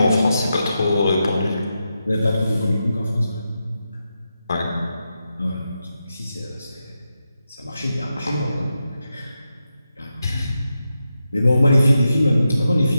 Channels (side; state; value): both; inverted; correlation -0.88